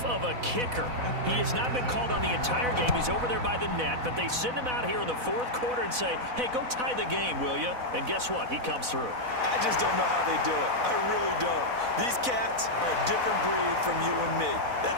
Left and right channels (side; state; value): left; late; 4.0 ms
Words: of a kicker. He has not been called on the entire game. He's over there by the net, but they send him out here in the 4th quarter and say, hey, go tie the game, will you? And guess what? He comes through. I just don't know how they do it. I really don't. These cats are a different breed from you and me.